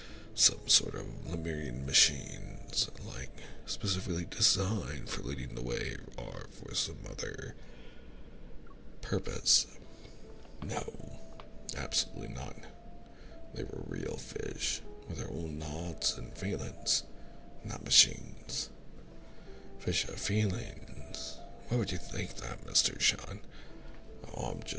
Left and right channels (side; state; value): both; identical; correlation 1.00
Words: some sort of Lemurian machines, like specifically designed for leading the way, or for some other purpose? No, absolutely not. They were real fish with their own thoughts and feelings, not machines. Fish have feelings. Why would you think that, Mr. Sean? Oh, I'm